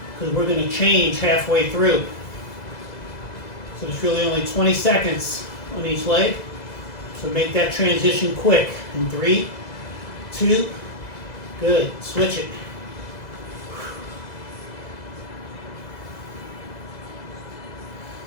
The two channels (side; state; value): right; late; 2.0 ms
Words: because we're going to change halfway through. So there's really only 20 seconds on each leg. So make that transition quick. In 3, 2, good. Switch it.